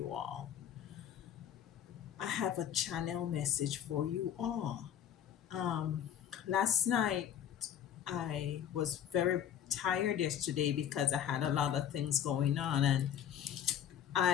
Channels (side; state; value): right; quieter; 9.6 dB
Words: all. I have a channel message for you all. Um, Last night I was very tired yesterday because I had a lot of things going on, and